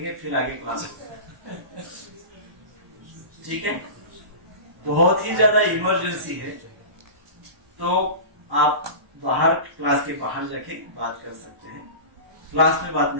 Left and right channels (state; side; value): late; left; 1.1 ms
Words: फिर आगे क्लास होगा। ठीक है? बहुत ही ज्यादा इमरजेंसी है तो आप बाहर, क्लास के बाहर जाके बात कर सकते हैं। क्लास में बात